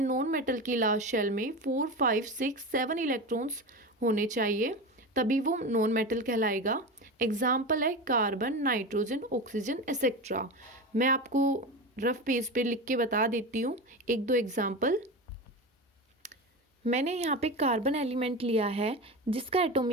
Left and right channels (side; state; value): both; normal; correlation 0.24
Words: नॉन मेटल की लास्ट शेल में 4, 5, 6, 7 इलेक्ट्रॉन्स होने चाहिए, तभी वो नॉन मेटल कहलाएगा। एग्जाम्पल है कार्बन, नाइट्रोजन, ऑक्सीजन एक्सेट्रा। मैं आपको रफ पेज पे लिख के बता देती हूँ 1-2 एग्जाम्पल। मैंने यहाँ पे कार्बन एलिमेंट लिया है जिसका